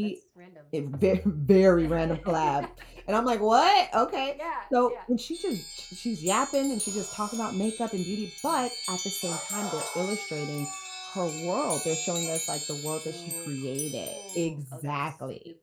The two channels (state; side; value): identical; both; correlation 1.00